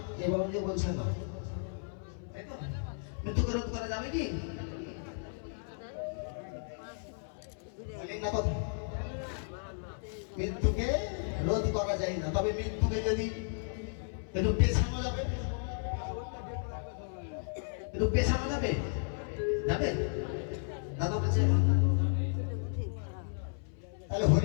এই বাবাজি বলছে না, তাই তো? মৃত্যুকে রোধ করা যাবে কি? না কথা, মৃত্যুকে রোধ করা যায় না, তবে মৃত্যুকে যদি একটু পেছানো যাবে, একটু পেছানো যাবে, যাবে? দাদা বলছে তাহলে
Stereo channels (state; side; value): silent; right; 55 dB below the other